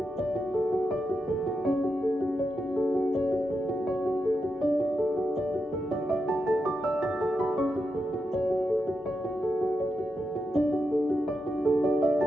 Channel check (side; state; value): both; normal; correlation 0.86